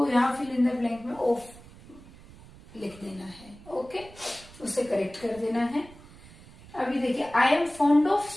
यहाँ फिल इन द ब्लैंक में ऑफ लिख देना है, ओके, उसे करेक्ट कर देना है। अभी देखिए, I am fond of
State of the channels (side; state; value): right; noise; rumble, 20 dB below the sound